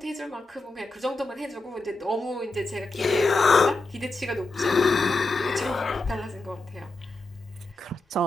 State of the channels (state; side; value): quieter; right; 3.0 dB